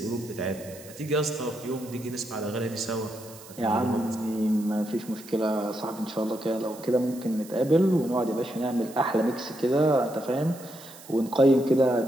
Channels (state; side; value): noise; right; hiss, 19 dB below the sound